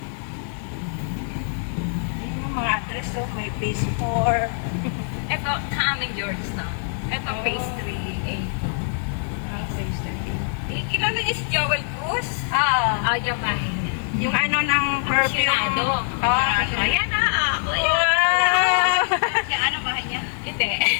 Ayun yung mga address, oh. May phase 4. Ito, sa aming Georgetown. Ito, phase 3A. Ang phase 30. Kilala niyo si Joel Cruz? Oo. Yung bahay niya. Yung ano ng perfume. Apasionado. Oo, Ayan na, ako. wow! Siya ano bahay niya? Hindi.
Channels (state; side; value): silent; right; 63 dB below the other